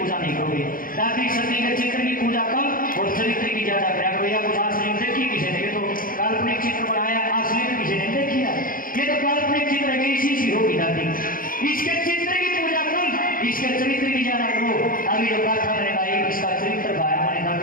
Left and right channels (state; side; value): late; right; 0.41 ms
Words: नहीं करोगे। दादी सती के चित्र की पूजा कम और चरित्र की ज्यादा करा करो। या कुछ असली देखी किसी ने, तो काल्पनिक चित्र बनाया, असली में किसी ने देखी है। ये तो काल्पनिक चित्र है, इसी सी होगी दादी। इसके चित्र की पूजा कम, इसके चरित्र की ज्यादा करो। अभी जो गाथा मैंने गाई, इसका चरित्र गाया मैंने